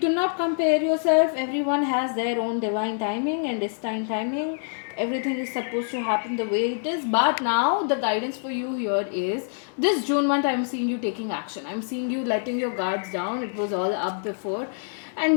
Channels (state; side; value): silent; right; 61 dB below the other